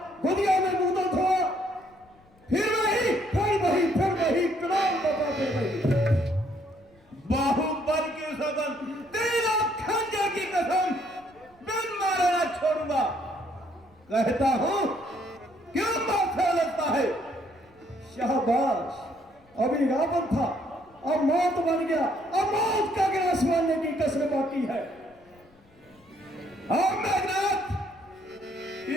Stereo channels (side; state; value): left; noise; rumble, 30 dB below the sound